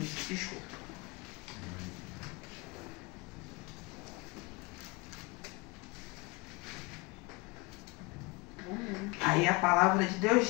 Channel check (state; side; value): quieter; right; 25.5 dB